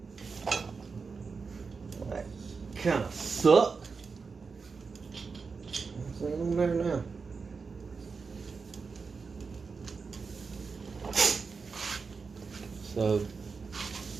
That kind of sucked. What's on there now? So,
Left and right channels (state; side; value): quieter; left; 4.9 dB